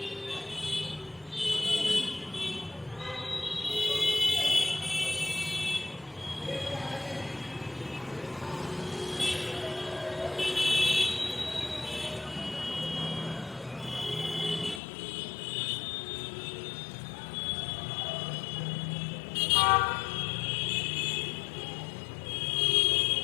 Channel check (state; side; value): drops out; right; at 14.8 s